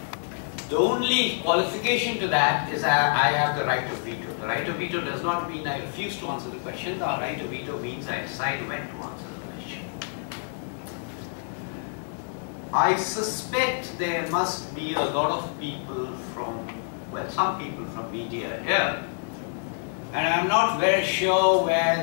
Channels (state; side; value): silent; right; digital silence